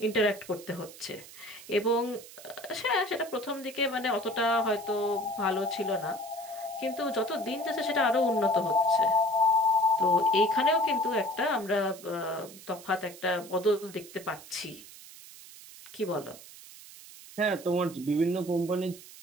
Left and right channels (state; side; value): noise; right; hiss, 18 dB below the sound